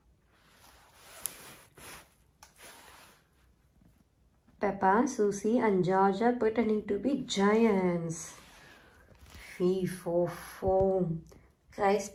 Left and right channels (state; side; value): identical; both; correlation 1.00